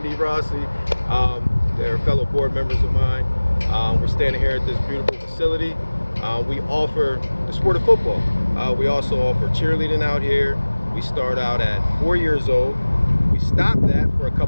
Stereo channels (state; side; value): inverted; both; correlation -1.00